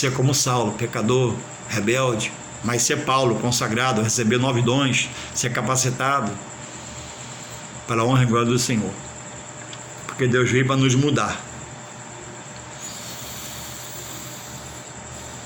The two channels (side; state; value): both; identical; correlation 1.00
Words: como Saulo, pecador, rebelde, mas ser Paulo, consagrado, receber 9 dons, ser capacitado para a honra e glória do Senhor, porque Deus veio para nos mudar.